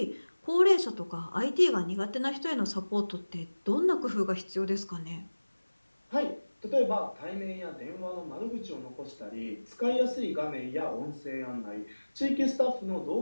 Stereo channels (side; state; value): both; inverted; correlation -1.00